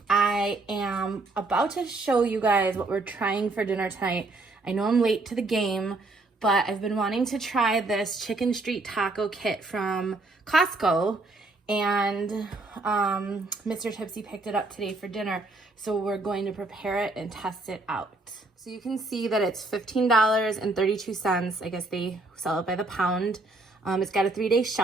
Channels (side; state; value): left; quieter; 3.2 dB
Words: I am about to show you guys what we're trying for dinner tonight. I know I'm late to the game, but I've been wanting to try this chicken street taco kit from Costco, and Mr. Tipsy picked it up today for dinner, so we're going to prepare it and test it out. So you can see that it's $15.32. I guess they sell it by the pound. It's got a 3-day